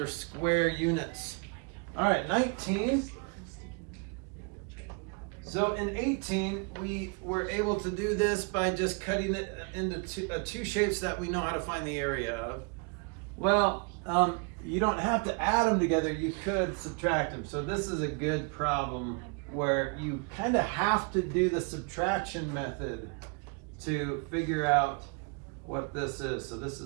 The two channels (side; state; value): left; quieter; 33.8 dB